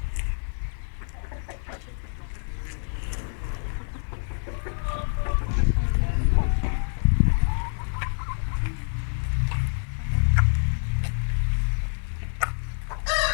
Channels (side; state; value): right; silent; digital silence